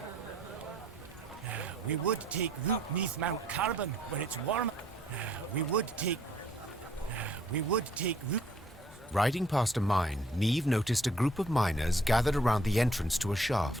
We would take root neath Mount Carbon, where it's warm. We would take root. Riding past a mine, Neve noticed a group of miners gathered around the entrance to a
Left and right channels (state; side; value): normal; both; correlation 0.62